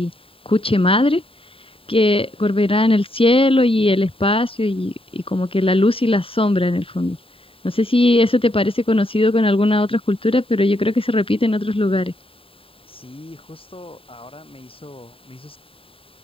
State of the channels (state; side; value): late; right; 0.27 ms